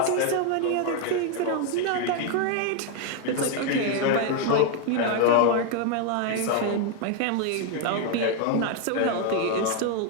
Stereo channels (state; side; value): different; both; correlation 0.01